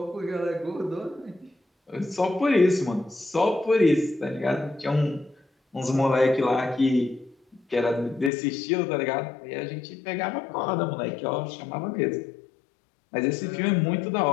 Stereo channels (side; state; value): right; drops out; at 8.3 s